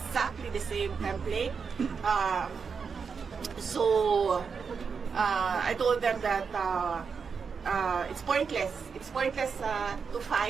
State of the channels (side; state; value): left; quieter; 5.7 dB